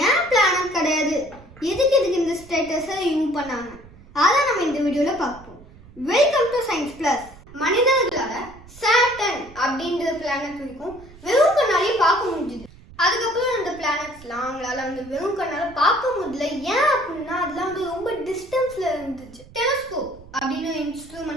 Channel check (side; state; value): right; noise; rumble, 21 dB below the sound